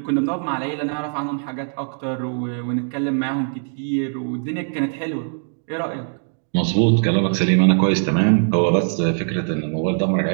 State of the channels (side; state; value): left; silent; 65 dB below the other